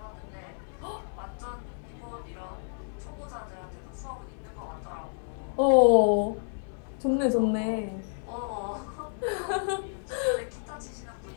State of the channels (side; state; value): right; silent; digital silence